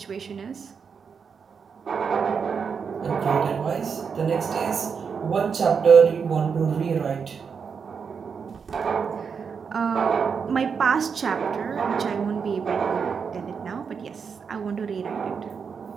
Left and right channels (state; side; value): quieter; left; 6.1 dB